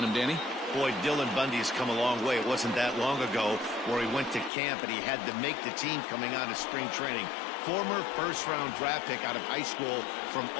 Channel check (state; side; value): drops out; right; at 4.5 s